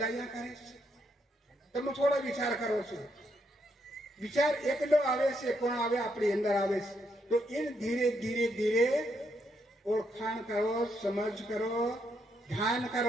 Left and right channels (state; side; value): normal; both; correlation 0.77